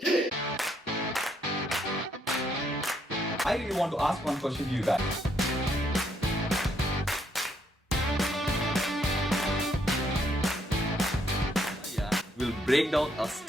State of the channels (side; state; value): both; normal; correlation 0.72